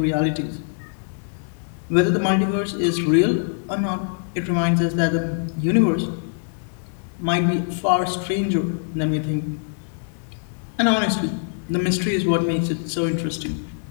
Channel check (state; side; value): silent; right; digital silence